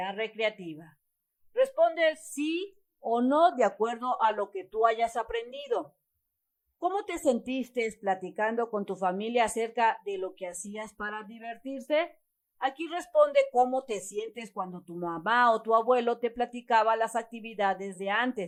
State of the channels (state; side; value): identical; both; correlation 1.00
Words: recreativa. Responde sí o no de acuerdo a lo que tú hayas aprendido. ¿Cómo te sentiste platicando con tu familia acerca de lo que hacías para divertirse? Aquí responde cómo te sientes cuando tu mamá o tu abuelo te platicaba las actividades de